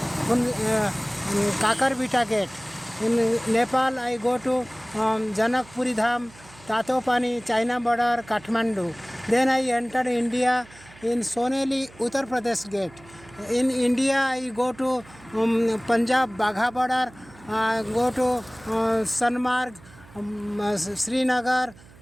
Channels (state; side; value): noise; right; hum, 23 dB below the sound